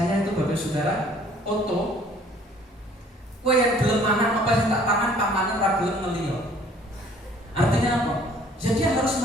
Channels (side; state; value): both; normal; correlation 0.56